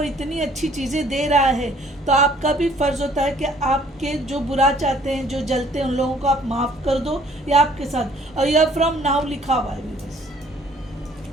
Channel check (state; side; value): normal; both; correlation 0.58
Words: इतनी अच्छी चीज़ें दे रहा है तो आपका भी फ़र्ज़ होता है कि आपके जो बुरा चाहते हैं, जो जलते हैं, उन लोगों को आप माफ़ कर दो। या आपके साथ और यह फ्रॉम नाउ लिखा हुआ है बस